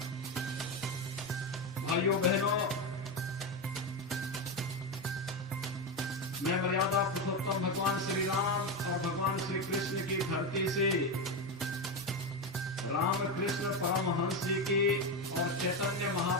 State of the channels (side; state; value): both; normal; correlation 0.13